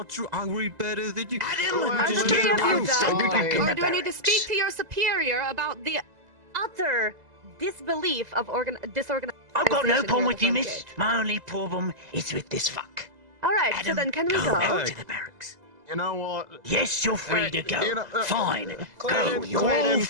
true. I read better than you. Adam, Are the Just three get of you out so we can done? go Or do I need to speak barracks. to your superior about the utter disbelief of disorganized? I've got no Organization problem here with at the you, front miss. gate. My only problem is with this fuck. Alright, so Adam, then can we go go? back to the barracks. You know what? Yes, you're free to go. you know, Fine. Go. Clayton, You're all Clayton.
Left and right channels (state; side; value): late; left; 2.0 ms